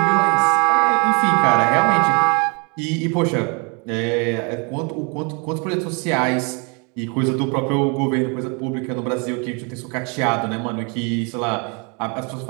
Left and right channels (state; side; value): quieter; left; 33.4 dB